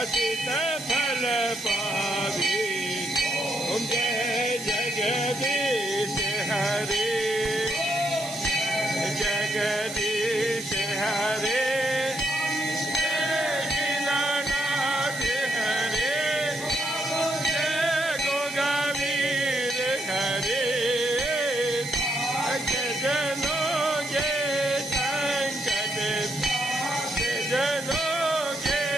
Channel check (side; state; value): right; noise; hiss, 11 dB below the sound